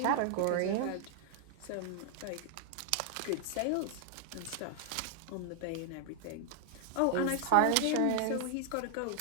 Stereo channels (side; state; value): both; different; correlation 0.00